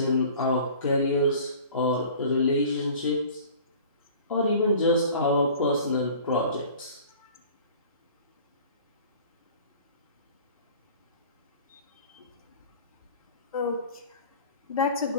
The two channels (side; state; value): both; inverted; correlation -0.45